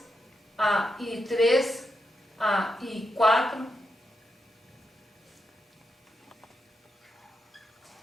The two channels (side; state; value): both; normal; correlation 0.84